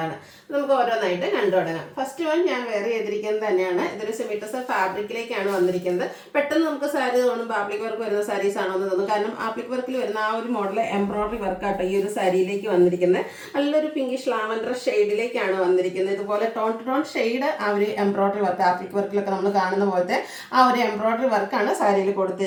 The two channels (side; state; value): both; identical; correlation 1.00